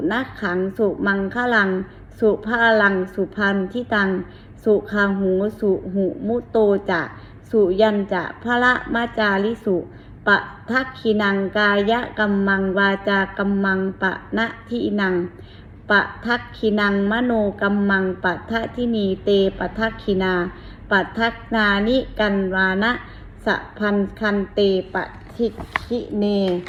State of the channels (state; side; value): identical; both; correlation 1.00